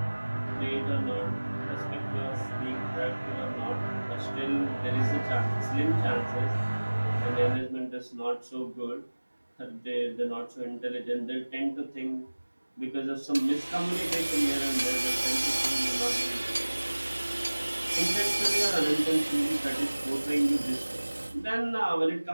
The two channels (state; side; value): inverted; both; correlation -1.00